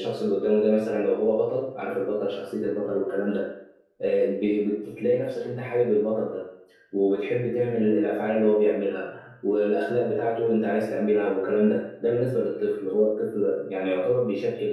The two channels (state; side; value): identical; both; correlation 1.00